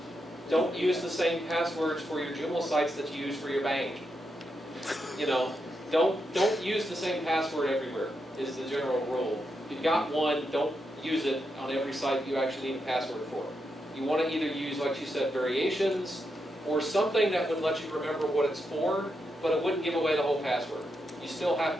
Don't use the same passwords for your Joomla sites that you use for your bank. You know, don't use the same password everywhere is the general rule. If you've got one, don't use it on every site you actually need a password for. You want to either use, like you said, variations or something that would let you remember what it's for, but it wouldn't give away the whole password. You still have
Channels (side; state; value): both; normal; correlation 0.84